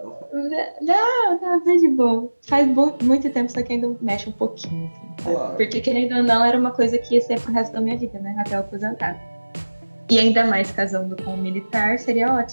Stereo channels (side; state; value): both; inverted; correlation -1.00